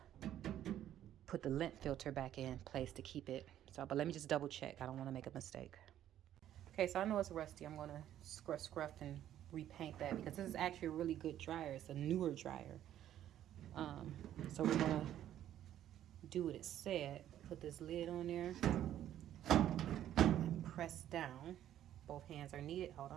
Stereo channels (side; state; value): left; quieter; 11.6 dB